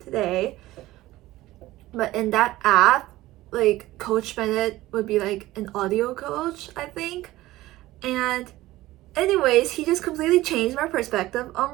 today. But in that app, like, Coach Bennett would be like an audio coach, I think. And anyways, he just completely changed my perspective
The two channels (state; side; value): quieter; left; 17.0 dB